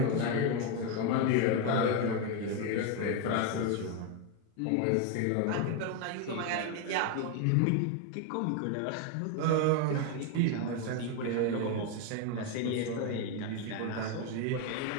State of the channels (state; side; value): different; both; correlation 0.02